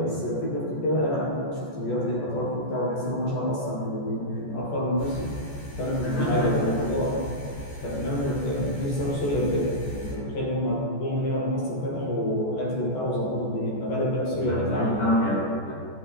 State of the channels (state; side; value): late; right; 14 ms